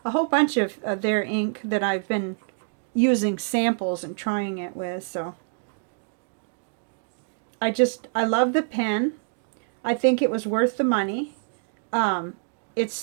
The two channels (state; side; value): silent; left; digital silence